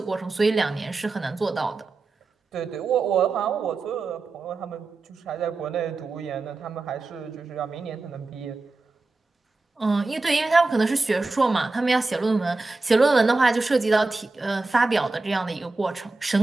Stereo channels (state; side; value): quieter; left; 3.5 dB